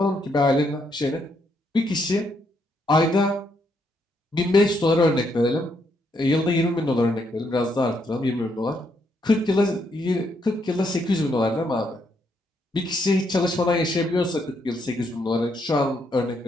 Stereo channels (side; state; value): both; normal; correlation 0.75